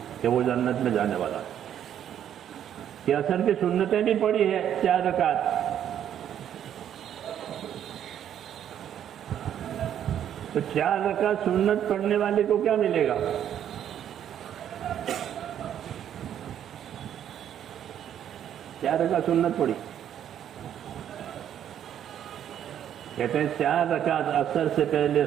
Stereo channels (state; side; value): quieter; left; 10.0 dB